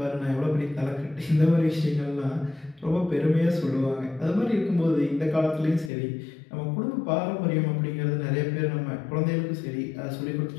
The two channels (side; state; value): right; drops out; at 5.9 s